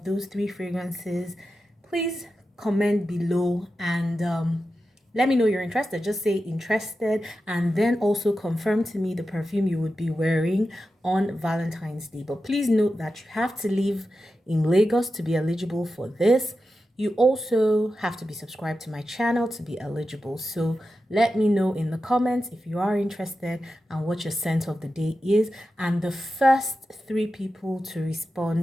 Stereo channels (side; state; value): both; normal; correlation 0.91